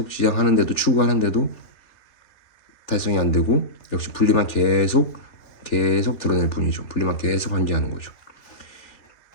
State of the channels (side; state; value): right; late; 3.5 ms